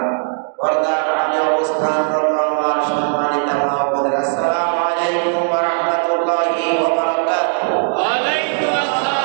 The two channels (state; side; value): silent; left; digital silence